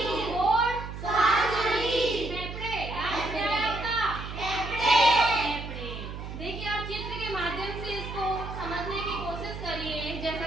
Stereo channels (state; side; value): noise; right; hum, 8 dB below the sound